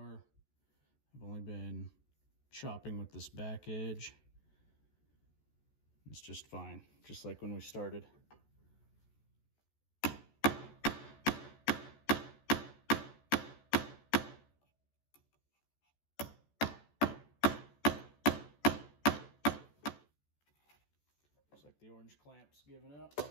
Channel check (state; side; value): late; right; 14 ms